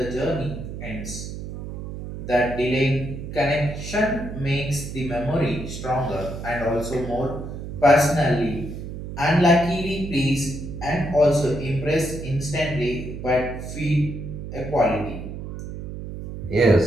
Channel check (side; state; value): right; noise; hum, 8 dB below the sound